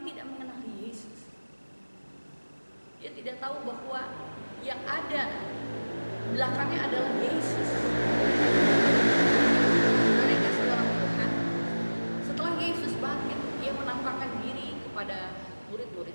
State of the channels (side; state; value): both; inverted; correlation -1.00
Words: mengenali Yesus. Dia tidak tahu bahwa yang ada belakangnya adalah Yesus. Mereka seorang Tuhan. Setelah Yesus bangkit, ia menampakkan diri kepada